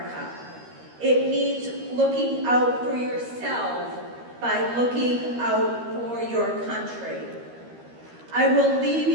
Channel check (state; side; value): late; left; 13 ms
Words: It means looking out for yourself by looking out for your country. I will leave